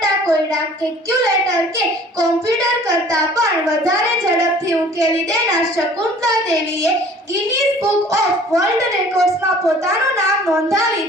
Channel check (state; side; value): normal; both; correlation 0.51